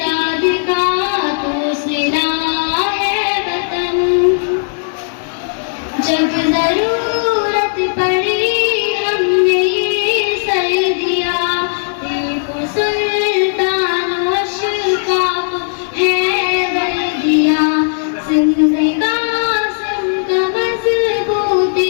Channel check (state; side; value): silent; right; digital silence